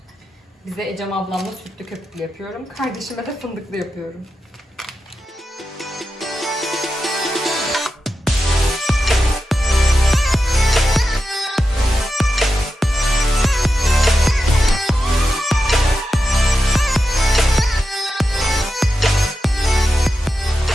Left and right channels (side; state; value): both; normal; correlation 0.90